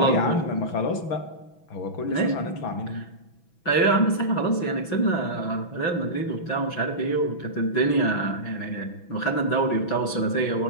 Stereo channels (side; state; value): right; late; 6.1 ms